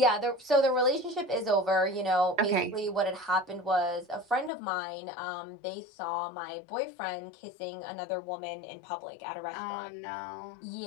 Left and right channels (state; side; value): drops out; right; at 4.5 s